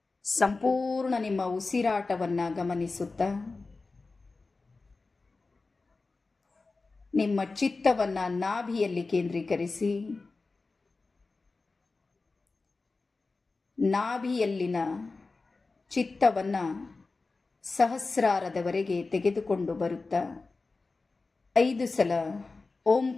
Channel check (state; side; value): quieter; right; 3.8 dB